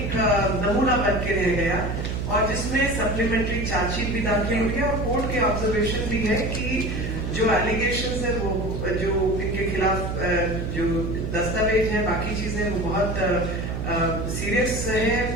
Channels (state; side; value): noise; right; hum, 3 dB below the sound